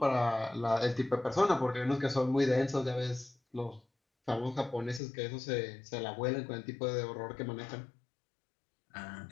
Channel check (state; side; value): drops out; right; at 5.0 s